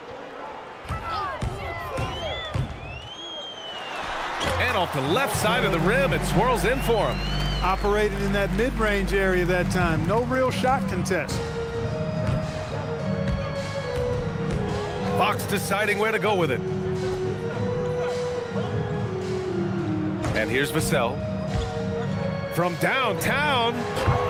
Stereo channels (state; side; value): identical; both; correlation 1.00